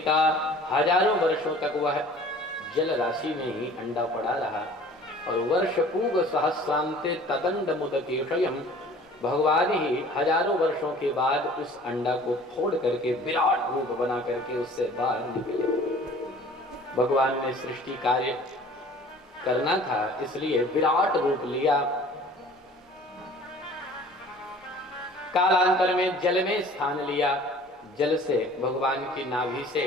हजारों वर्षों तक वह जल राशि में ही अंडा पड़ा रहा और वर्ष पूग सहस्रांते तदंड मुदकेशयम, भगवान ही हजारों वर्षों के बाद उस अंडा को फोड़ करके विराट रूप बना करके उससे बाहर निकले। भगवान ने सृष्टि कार्य करना था, इसलिए विराट रूप लिया। कालांतर में जल में स्थान लिया। जल से भगवान की नाभि से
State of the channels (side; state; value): both; normal; correlation 0.48